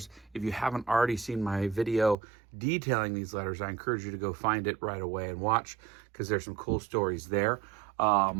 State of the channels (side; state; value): left; drops out; at 2.1 s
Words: If you haven't already seen my video detailing these letters, I encourage you to go find it right away and watch, because there's some cool stories there.